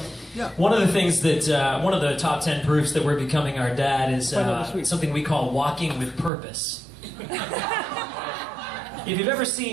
one of the things that, one of the top 10 proofs that we're becoming our dad is something we call walking with purpose. If you've ever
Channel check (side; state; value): left; drops out; at 6.3 s